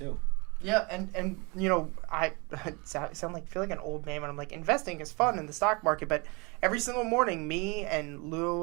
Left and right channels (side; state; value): left; quieter; 29.3 dB